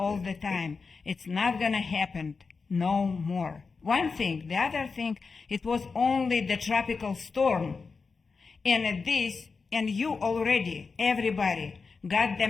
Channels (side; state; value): right; quieter; 4.7 dB